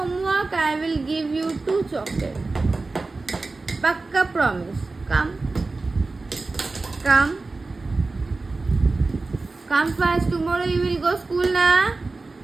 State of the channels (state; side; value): quieter; left; 3.6 dB